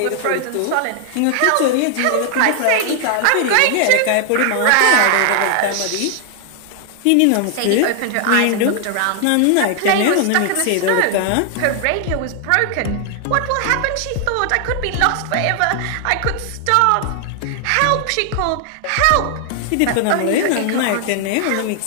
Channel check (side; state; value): both; different; correlation 0.00